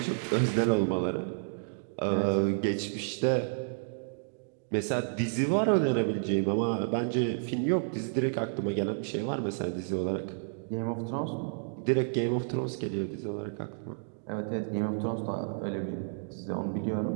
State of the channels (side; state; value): left; silent; digital silence